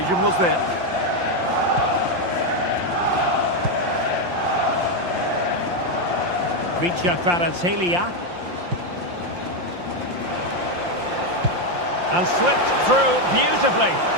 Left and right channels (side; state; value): left; late; 5.7 ms